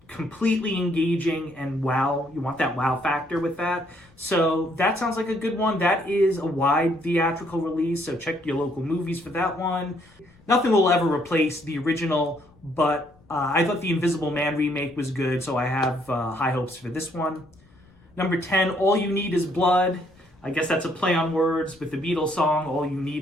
completely engaging and wow. You want that wow factor with that. So that sounds like a good one. That is a wide theatrical release, so check your local movies for that one. Nothing will ever replace the original, but I thought the Invisible Man remake was good, so I have high hopes for this one. Number 10, All You Need Is Blood. I guess that's a play on words with the Beatles song, All You Need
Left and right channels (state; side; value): noise; left; rumble, 29 dB below the sound